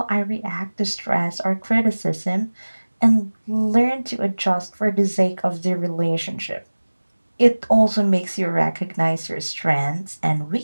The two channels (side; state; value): both; inverted; correlation -1.00